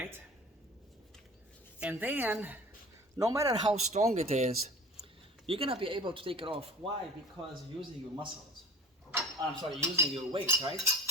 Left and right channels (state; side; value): normal; both; correlation 0.40